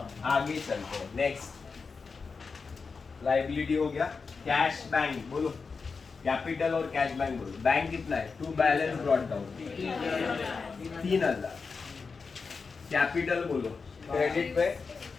आगे चलते हैं. नेक्स्ट लाइबिलिटी हो गया. कैश बैंक बोलो. कैपिटल और कैश बैंक बोलो. बैंक कितना है? To balance brought down 3,000. Capital बोलो. क्रेडिट पे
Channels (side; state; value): right; quieter; 4.9 dB